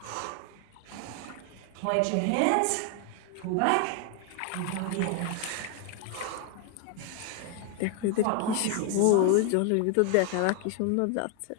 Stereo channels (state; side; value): different; both; correlation 0.00